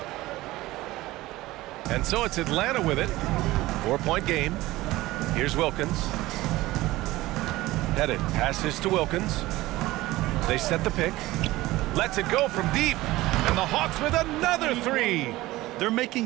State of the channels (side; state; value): left; quieter; 18.1 dB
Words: And so it's Atlanta with it. 4-point game. Here's Wilkins. Pettit passes to Wilkins. They set the pick. Lets it go from deep. And the Hawks with another three. They're